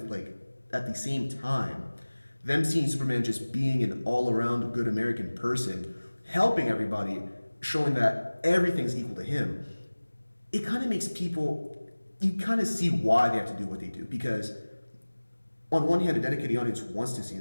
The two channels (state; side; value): inverted; both; correlation -1.00